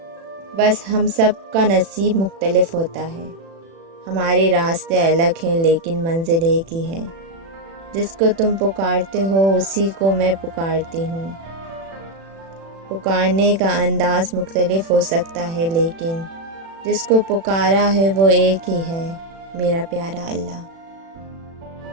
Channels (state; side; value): late; left; 36 ms